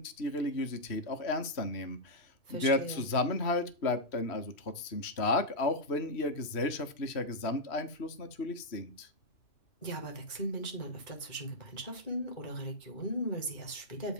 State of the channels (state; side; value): late; right; 3.1 ms